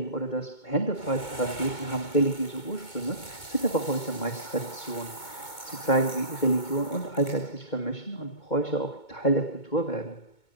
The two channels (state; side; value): late; right; 2.2 ms